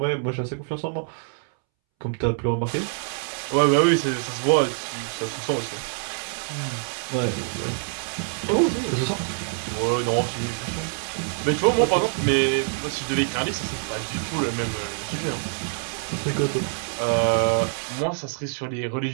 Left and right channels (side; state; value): left; silent; 62 dB below the other